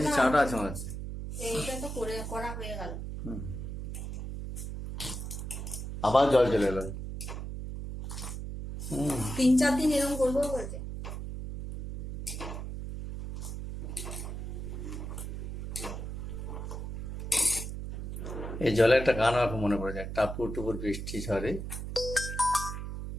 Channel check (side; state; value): right; noise; hum, 6 dB below the sound